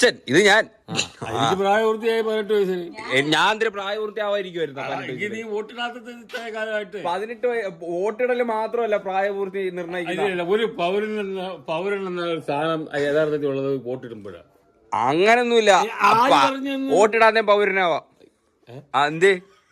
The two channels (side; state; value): both; identical; correlation 1.00